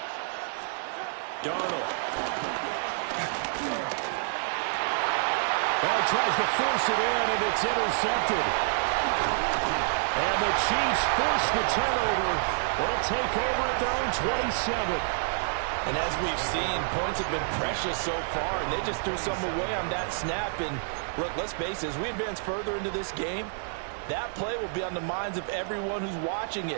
Darnold. Well, he tries to force it in, and it's intercepted. And the Chiefs force the turnover. They'll take over at their own 27. And as we've seen, points have been precious so far, and they just threw some away on that snap. And look, let's face it, as we advance further into this game, that play will be on the minds of everyone who's watching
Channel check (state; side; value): silent; left; digital silence